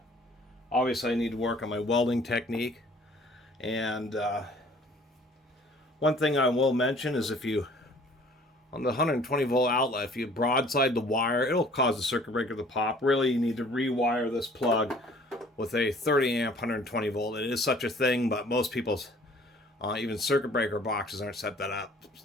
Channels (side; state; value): both; normal; correlation 0.54